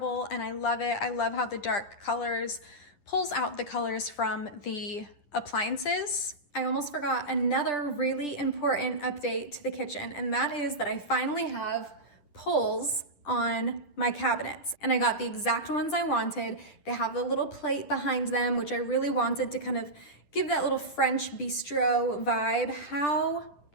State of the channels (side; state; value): right; late; 10 ms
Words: and I love it. I love how the dark colors pulls out the colors from the appliances. I almost forgot another really important update to the kitchen, and that is that I finally have pulls on my cabinets, and I got the exact ones I wanted. They have a little plate behind them, which I really wanted to kind of give that little French bistro vibe. How